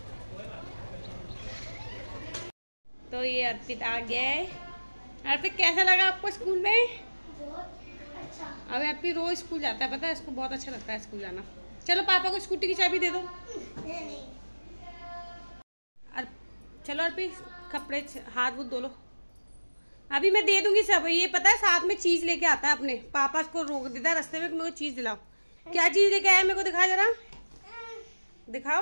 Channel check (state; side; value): inverted; both; correlation -1.00